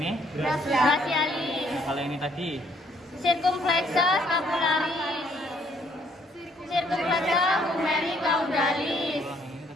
Brachialis. Kalau ini tadi. Circumflexa scapularis. Circumflexa humeri caudalis. Ulang yang ini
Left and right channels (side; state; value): both; normal; correlation 0.66